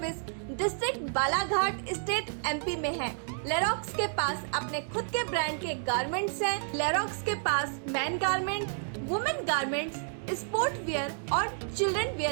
district Balaghat state MP में है। लेरोक्स के पास अपने खुद के ब्रांड के गारमेंट्स हैं। लेरोक्स के पास man garment, women garments, sport wear और चिल्ड्रन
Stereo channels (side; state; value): left; silent; digital silence